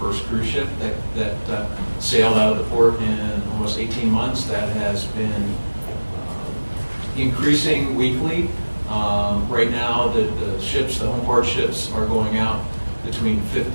cruise ship that sailed out of the port in almost 18 months. That has been increasing weekly. Right now, the ships, the home port ships, are going out between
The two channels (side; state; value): both; inverted; correlation -1.00